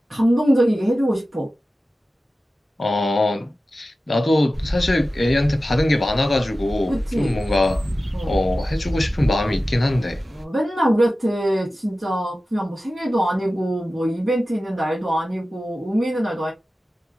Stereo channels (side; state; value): both; normal; correlation 0.95